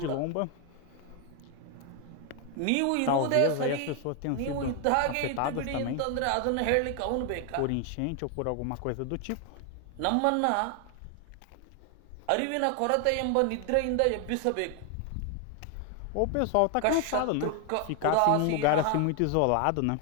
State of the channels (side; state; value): both; different; correlation 0.01